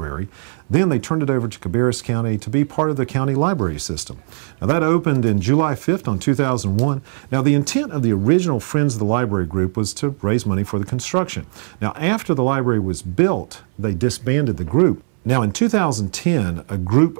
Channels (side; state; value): left; silent; 61 dB below the other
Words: then they turned it over to Cabarrus County to be part of the county library system. Now, that opened in July 5th on 2001. Now, the intent of the original Friends of the Library group was to raise money for the construction. Now, after the library was built, they disbanded the group. Now, in 2010, a